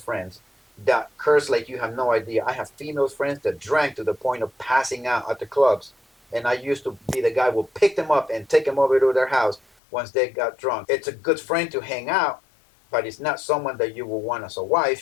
that curse like you have no idea. I have female friends that drank to the point of passing out at the clubs. And I used to be the guy who would pick them up and take them over to their house once they got drunk. It's a good friend to hang out, but it's not someone that you will want as a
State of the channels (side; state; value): right; drops out; at 9.6 s